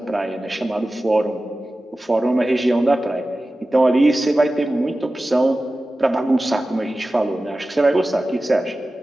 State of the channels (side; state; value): both; normal; correlation 0.95